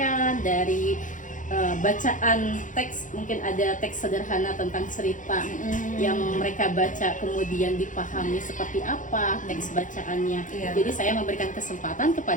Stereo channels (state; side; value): late; right; 0.37 ms